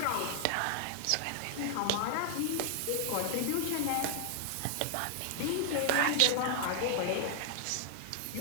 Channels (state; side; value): different; both; correlation 0.00